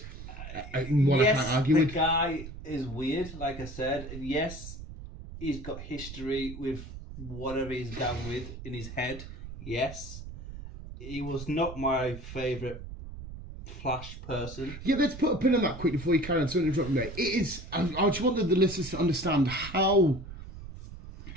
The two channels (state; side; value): noise; right; rumble, 12 dB below the sound